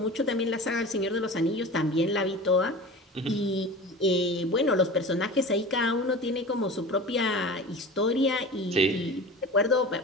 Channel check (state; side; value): normal; both; correlation 0.34